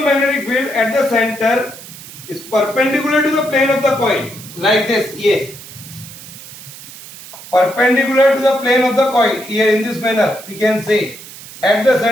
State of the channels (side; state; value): right; noise; hiss, 16 dB below the sound